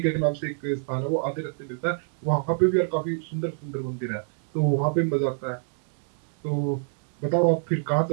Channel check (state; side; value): silent; left; 60 dB below the other